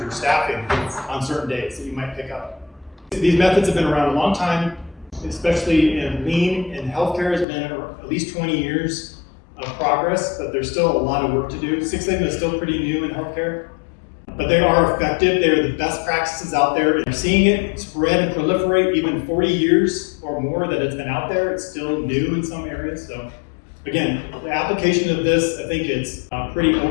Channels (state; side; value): drops out; right; at 7.5 s